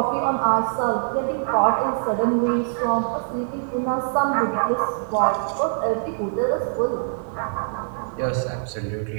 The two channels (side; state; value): left; silent; digital silence